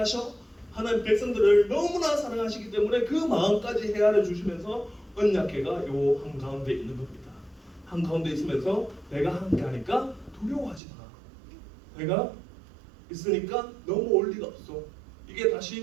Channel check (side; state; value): left; drops out; at 10.8 s